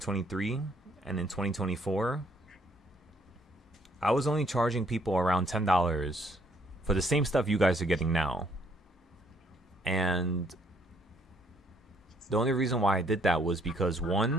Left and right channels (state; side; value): normal; both; correlation 0.67